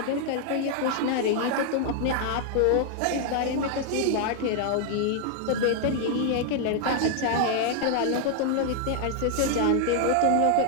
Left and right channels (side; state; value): both; different; correlation 0.00